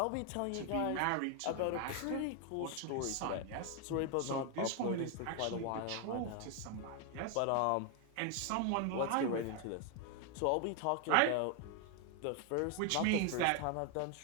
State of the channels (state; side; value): different; both; correlation 0.00